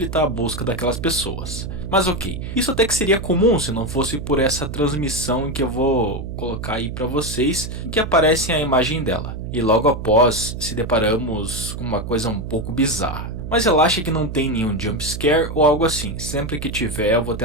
a busca daquelas pessoas. Mas ok, isso até que seria comum se não fosse por essa transmissão em que eu vou colocar aí para vocês, em que aparece a imagem dela. E logo após se deparamos com uma coisa um pouco bizarra. Mas relaxa que não tem nenhum jump scare ou algo assim, sempre que tiver eu vou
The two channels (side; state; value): right; noise; hum, 7 dB below the sound